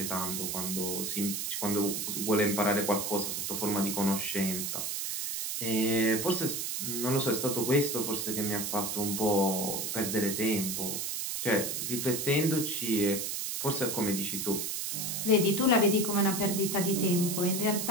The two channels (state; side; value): noise; right; hiss, 2 dB below the sound